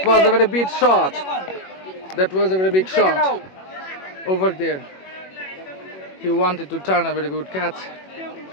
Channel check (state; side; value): late; right; 21 ms